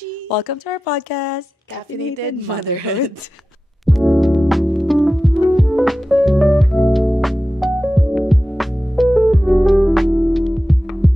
Welcome to our podcast, Caffeinated Motherhood.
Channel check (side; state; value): both; normal; correlation 0.93